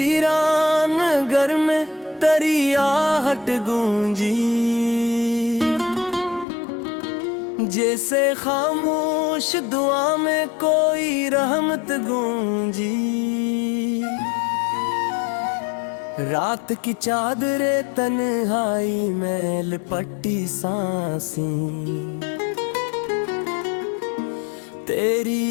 घर में तेरी आहट गूंजी, जैसे खामोश दुआ में कोई रहमत गूंजी। रात की चादरे तन्हाई में लिपटी सांसें,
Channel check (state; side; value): drops out; right; at 6.5 s